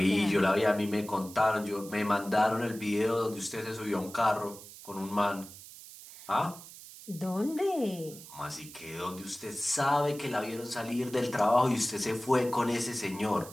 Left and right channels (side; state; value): right; noise; hiss, 16 dB below the sound